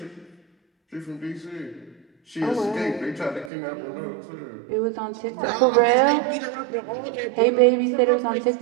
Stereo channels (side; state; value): left; drops out; at 3.5 s